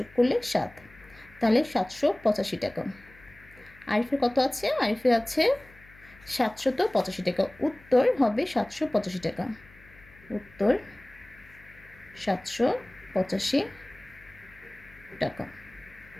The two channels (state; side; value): noise; left; hum, 24 dB below the sound